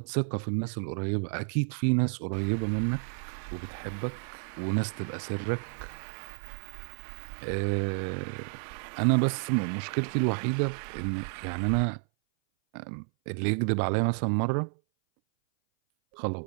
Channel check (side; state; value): left; silent; 57 dB below the other